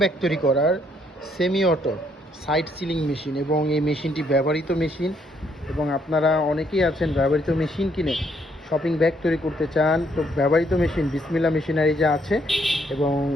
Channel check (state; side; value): normal; both; correlation 0.70